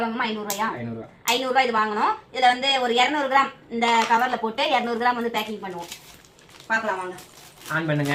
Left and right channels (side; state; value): both; identical; correlation 1.00